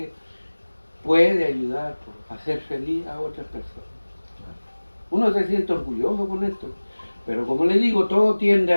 puede ayudar a hacer feliz a otras personas. Uno se siente orgulloso con esto. Pero como le digo, todo tiende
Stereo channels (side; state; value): both; inverted; correlation -1.00